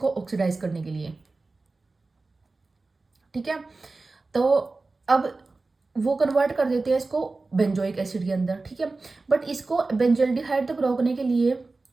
ऑक्सीडाइज करने के लिए, ठीक है। तो अब वो कन्वर्ट कर देते हैं इसको बेंजोइक एसिड के अंदर, ठीक है। बट इसको बेंजल्डिहाइड तक रोकने के लिए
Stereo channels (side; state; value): left; quieter; 3.6 dB